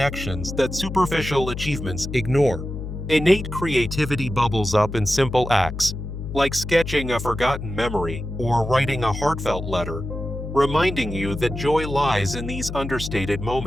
that superficial achievements ignore. Innate creativity bubbles up in simple acts, like sketching a forgotten memory or writing a heartfelt letter, reminding you that joy lies in these understated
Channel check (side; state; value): left; noise; hum, 7 dB below the sound